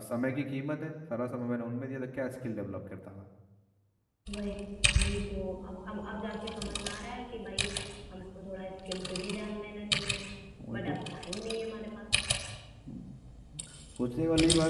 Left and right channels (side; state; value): both; identical; correlation 1.00